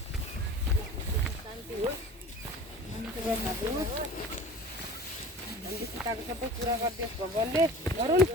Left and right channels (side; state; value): both; normal; correlation 0.40